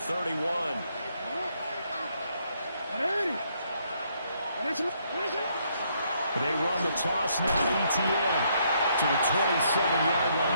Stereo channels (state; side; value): inverted; both; correlation -0.72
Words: They run the toss now to ETN to the 27-yard